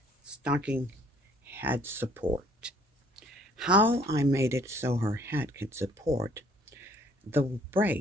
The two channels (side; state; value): both; normal; correlation 0.61